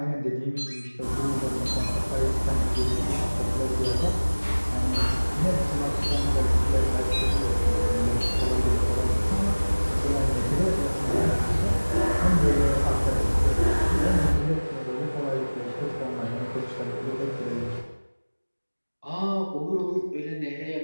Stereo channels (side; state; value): both; inverted; correlation -1.00